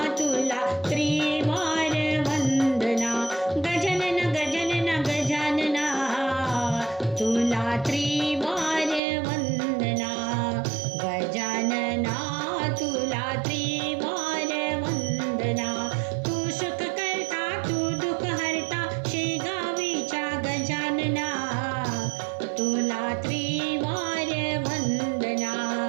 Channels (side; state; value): left; drops out; at 9.0 s